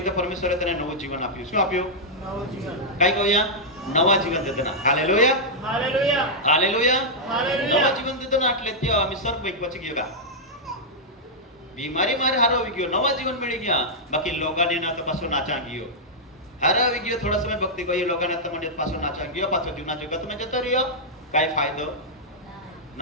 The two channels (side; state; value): both; normal; correlation -0.08